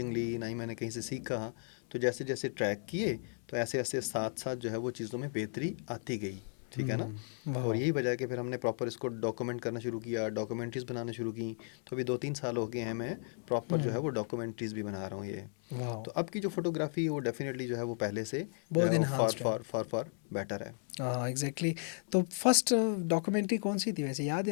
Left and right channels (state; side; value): silent; right; 54 dB below the other